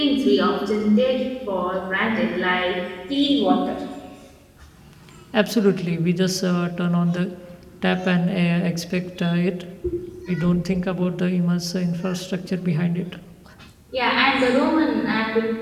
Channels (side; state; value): both; identical; correlation 1.00